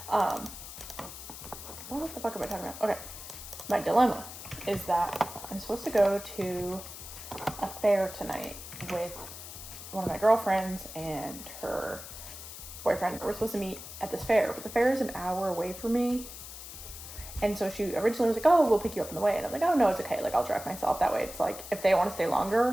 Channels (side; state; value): left; noise; hiss, 12 dB below the sound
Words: What the fuck am I talking about? Okay, my dilemma is that I'm supposed to go to a fair tonight with one of my girlfriends and her boyfriend. We're supposed to meet at this fair, but the fair is an hour away from me. And so she originally was like, oh, we'll pick you up on the way. And I'm like, oh, no, it's okay. Like, I'll drive myself. That way it's like, if they want to stay